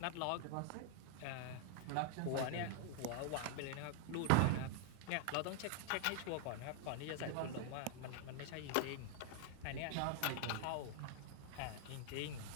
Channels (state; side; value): different; both; correlation 0.00